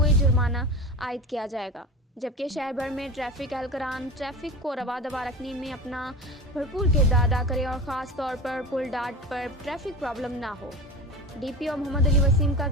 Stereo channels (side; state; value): both; normal; correlation 0.31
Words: جرمانہ عائد کیا جائے گا، جبکہ شہر بھر میں ٹریفک اہلکاران ٹریفک کو رواں رکھنے میں اپنا بھرپور کردار ادا کریں اور خاص طور پر پل ڈاٹ پر ٹریفک پرابلم نہ ہو۔ ڈی پی او محمد علی وسیم کا